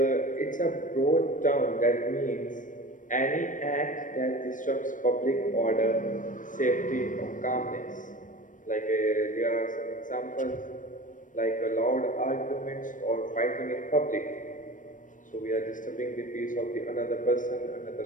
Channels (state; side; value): late; right; 0.38 ms